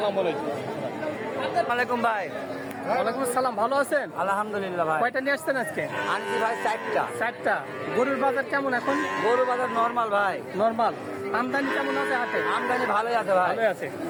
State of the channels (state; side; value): identical; both; correlation 1.00